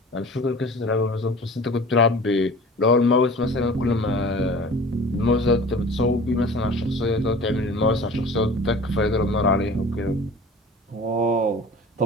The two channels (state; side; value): normal; both; correlation 0.42